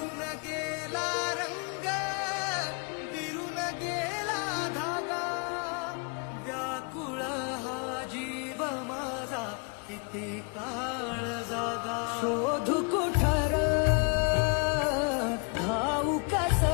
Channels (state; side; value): quieter; right; 34.9 dB